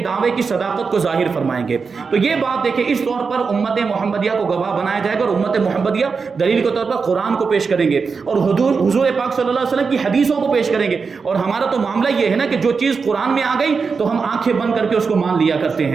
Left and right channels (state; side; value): quieter; left; 5.1 dB